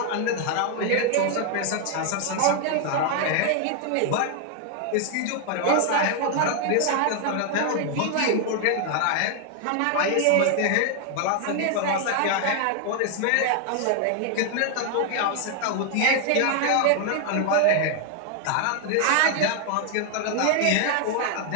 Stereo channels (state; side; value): different; both; correlation 0.00